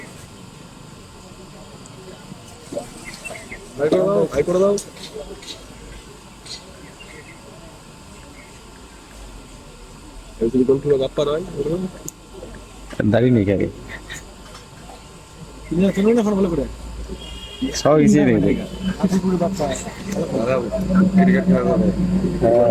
দাঁড়িয়ে নেই খেলে সব ইজি নেই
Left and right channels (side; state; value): both; identical; correlation 1.00